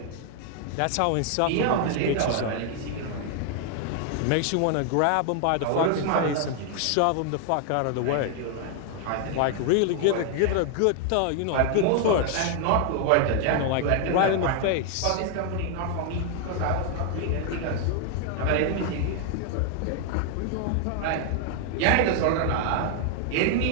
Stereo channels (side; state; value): both; different; correlation 0.00